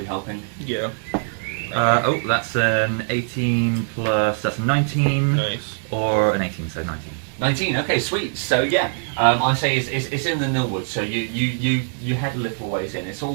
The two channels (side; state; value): left; silent; 58 dB below the other